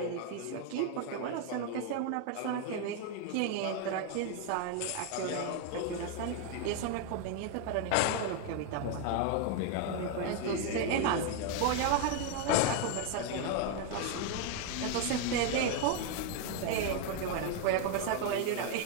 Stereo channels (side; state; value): both; different; correlation 0.01